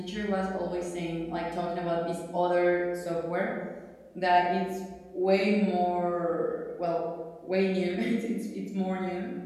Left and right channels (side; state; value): both; identical; correlation 1.00